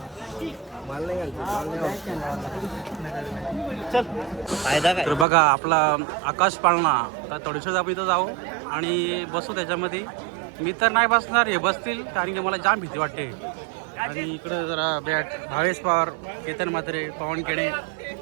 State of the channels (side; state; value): left; drops out; at 5.2 s